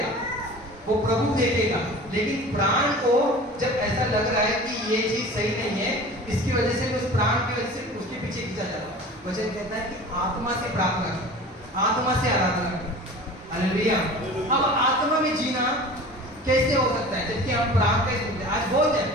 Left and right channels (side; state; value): both; normal; correlation 0.39